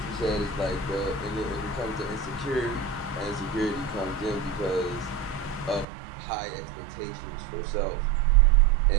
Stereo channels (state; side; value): drops out; left; at 5.9 s